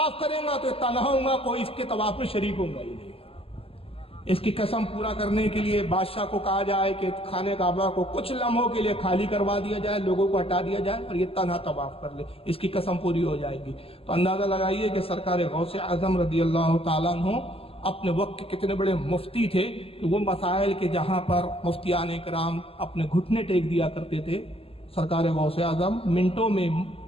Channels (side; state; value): right; late; 0.28 ms